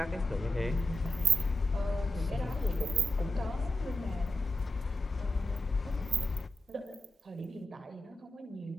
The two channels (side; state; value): both; normal; correlation 0.83